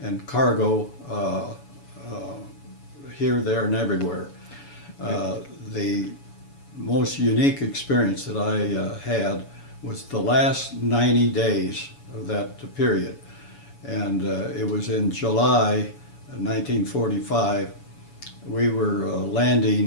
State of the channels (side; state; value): right; late; 7.0 ms